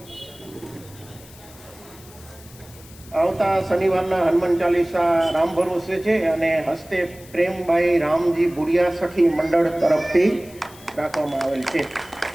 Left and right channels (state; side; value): noise; left; hiss, 22 dB below the sound